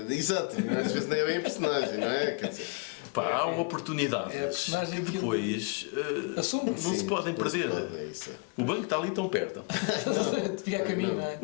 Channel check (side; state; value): right; quieter; 31.8 dB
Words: exato, às vezes nem é bem a personagem, não é? Quer dizer, Pá, há oportunidades. É a personagem que depois assume. não se podem perder. É isso. O banco está ali tão perto. Fica a caminho, não é?